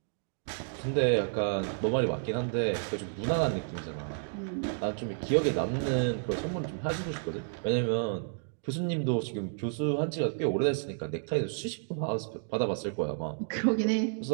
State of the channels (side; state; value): left; silent; digital silence